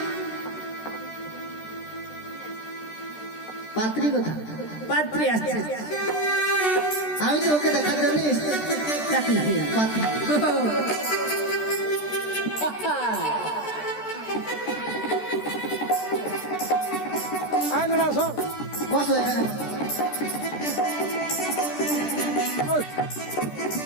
পাত্রী কোথায়? পাত্রী আসছে। আমি তো ওকে দেখার জন্য পাত্রী। বসো এখানে।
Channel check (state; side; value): late; right; 13 ms